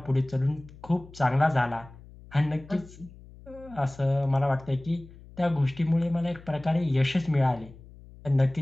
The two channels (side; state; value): left; noise; hum, 20 dB below the sound